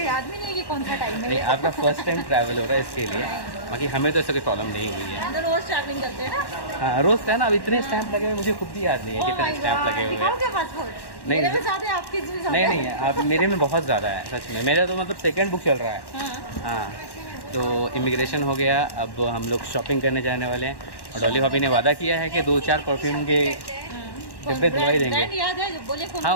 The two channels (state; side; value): late; right; 1.1 ms